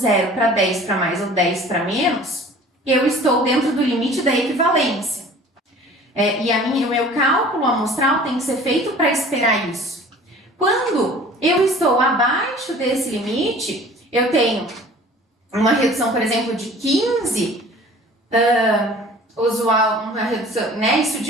para 10 para mais ou 10 para menos, eu estou dentro do limite da equivalência. O meu cálculo amostral tem que ser feito para esperar isso. Quando eu estou abaixo desse limite, eu tenho uma redução, por exemplo, de 15, usual, uma redução, né? Isso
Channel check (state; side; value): normal; both; correlation 0.47